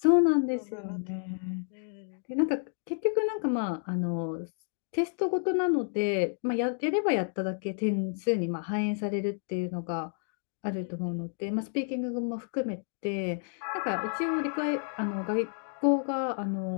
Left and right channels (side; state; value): right; silent; 58 dB below the other